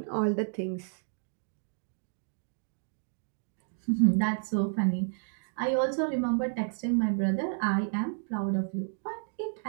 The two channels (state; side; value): silent; left; digital silence